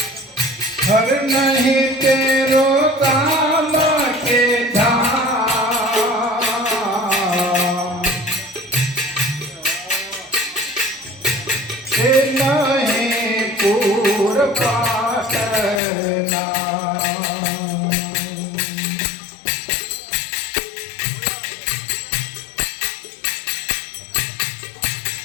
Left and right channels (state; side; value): drops out; right; at 15.8 s